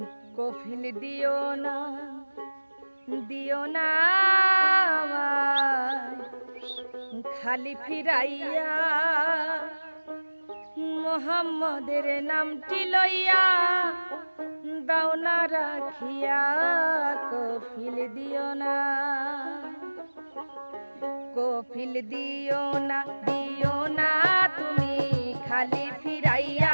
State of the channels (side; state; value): both; inverted; correlation -1.00